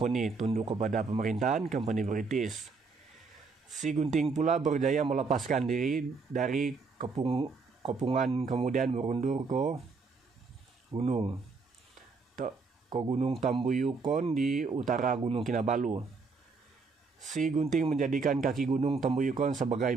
tunduk kepada pemerintahan company British. Si Gunting pula berjaya melepaskan diri dari kepungan kemudian berundur ke Gunung Tambuyukon di utara Gunung Kinabalu. Si Gunting menjadikan kaki Gunung Tambuyukon sebagai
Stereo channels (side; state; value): left; quieter; 4.4 dB